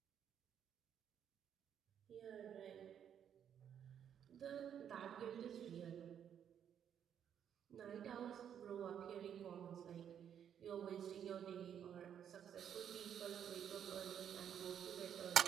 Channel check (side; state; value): left; quieter; 8.9 dB